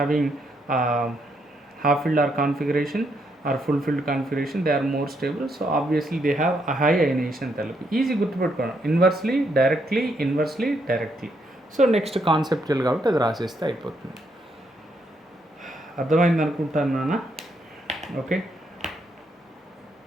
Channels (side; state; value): both; normal; correlation 0.76